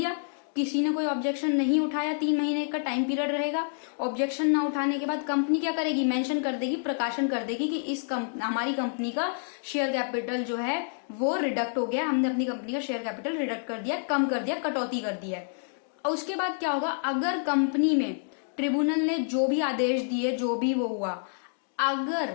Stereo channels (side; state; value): right; silent; digital silence